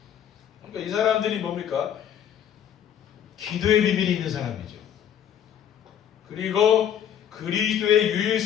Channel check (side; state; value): right; quieter; 9.5 dB